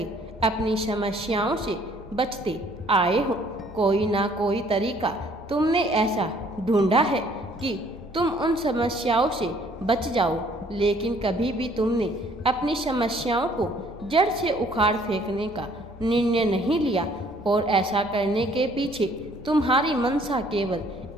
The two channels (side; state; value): both; normal; correlation 0.60